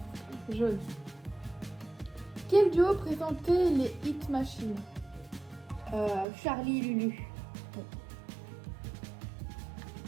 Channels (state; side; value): drops out; left; at 6.2 s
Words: Jaune. Quel duo présentait les Hit Machines? Charlie et Lulu.